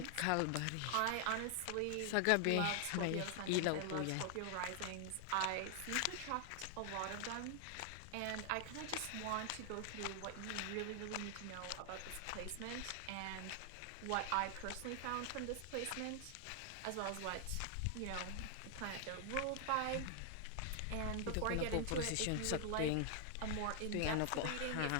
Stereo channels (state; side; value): different; both; correlation 0.00